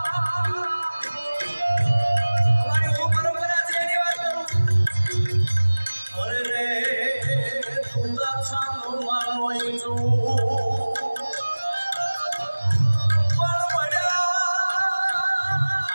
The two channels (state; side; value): inverted; both; correlation -1.00